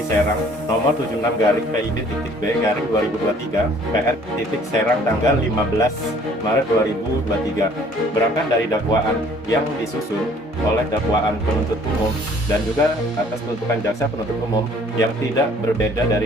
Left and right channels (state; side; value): normal; both; correlation 0.57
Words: Serang nomor 76-PID.B/2023 PR.Serang tanggal 15 Maret 2023 berangkat dari dakwaan yang disusun oleh dakwaan penuntut umum dan juga atas tuntutan jaksa penuntut umum yang tidak berbeda dari